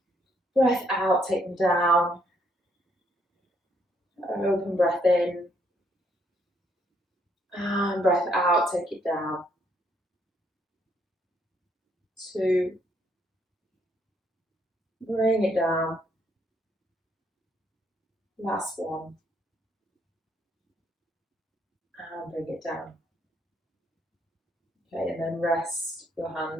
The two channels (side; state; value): both; normal; correlation 0.71